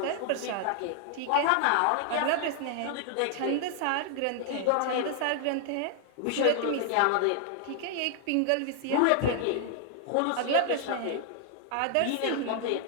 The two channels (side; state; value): both; different; correlation 0.00